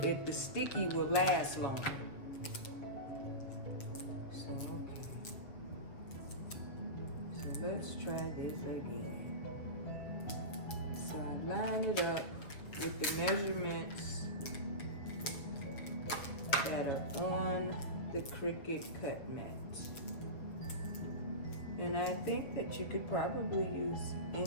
The sticky will last longer. So okay. So let's try this again. So I line it up with the measurements that are on the Cricut cut mat. And I think that you could probably use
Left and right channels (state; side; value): late; right; 7.2 ms